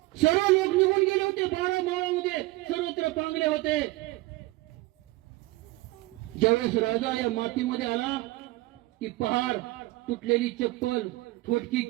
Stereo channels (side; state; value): left; quieter; 20.0 dB